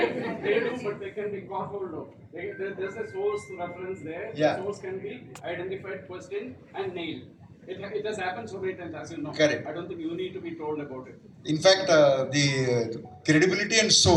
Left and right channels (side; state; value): both; identical; correlation 1.00